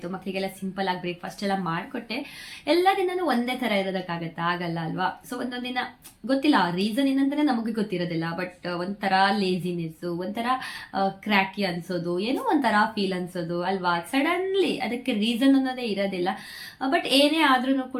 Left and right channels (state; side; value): identical; both; correlation 1.00